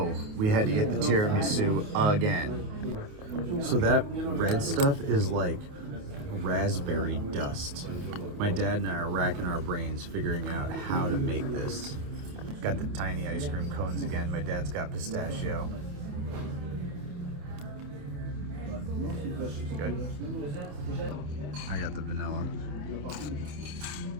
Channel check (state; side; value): late; left; 28 ms